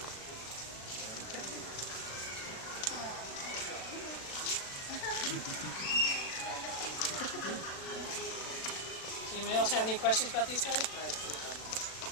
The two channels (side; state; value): right; late; 36 ms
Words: Does anybody else have any questions about these guys?